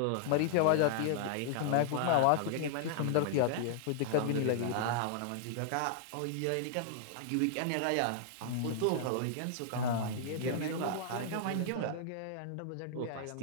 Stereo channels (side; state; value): both; different; correlation -0.01